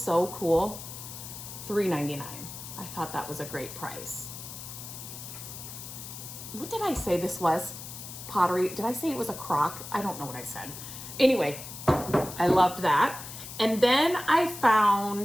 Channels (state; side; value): noise; left; hiss, 11 dB below the sound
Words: cool? $3.99. I thought that was a great price. What did I say this was? Pottery. Did I say it was a crock? I don't know what I said. Anyway, I loved that. And then I